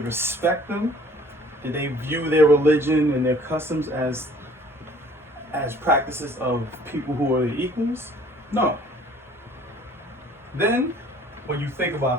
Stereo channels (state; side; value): normal; both; correlation 0.54